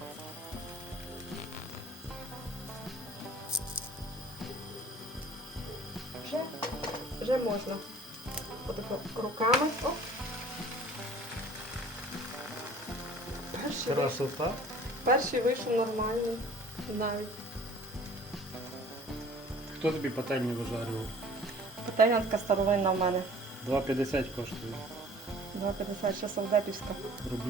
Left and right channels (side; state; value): both; normal; correlation 0.49